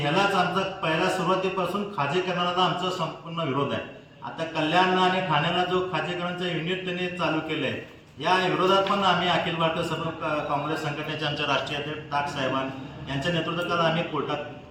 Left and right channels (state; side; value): identical; both; correlation 1.00